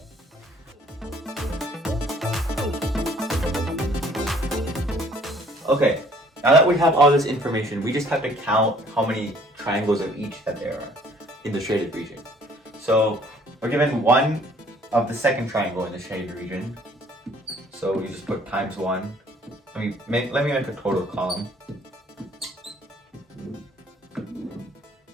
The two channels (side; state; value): both; normal; correlation 0.58